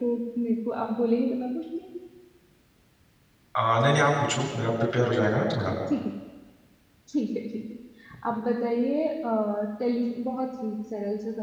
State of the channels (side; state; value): both; identical; correlation 1.00